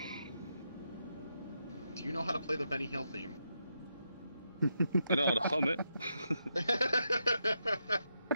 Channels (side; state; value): both; inverted; correlation -0.83